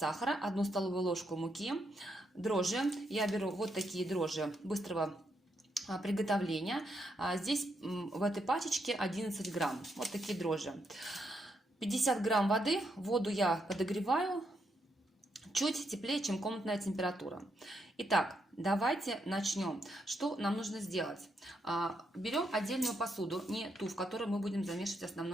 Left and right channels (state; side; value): normal; both; correlation 0.79